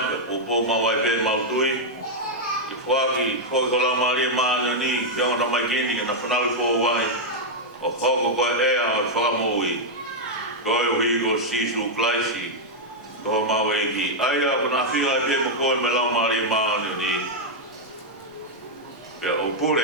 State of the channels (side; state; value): both; normal; correlation -0.02